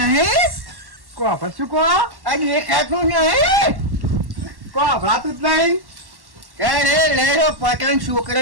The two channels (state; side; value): late; left; 1.1 ms